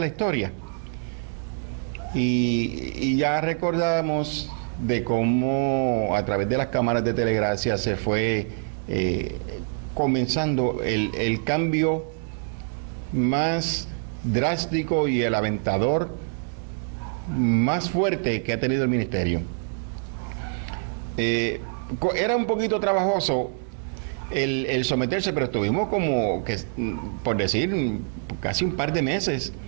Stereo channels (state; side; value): silent; left; 61 dB below the other